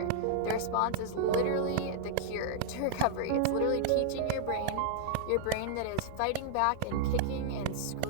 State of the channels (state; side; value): different; both; correlation -0.01